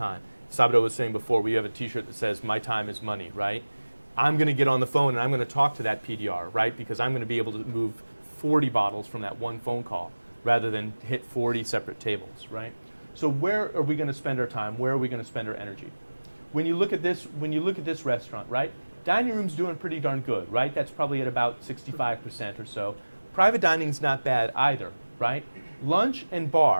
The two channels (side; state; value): both; inverted; correlation -1.00